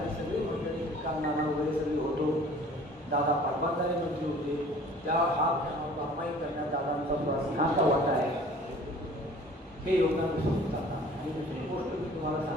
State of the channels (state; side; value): normal; both; correlation 0.49